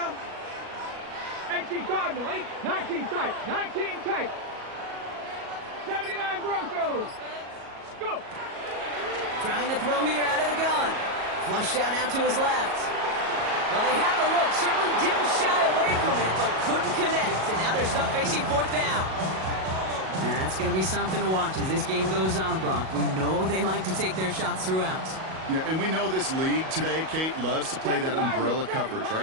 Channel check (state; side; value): late; left; 37 ms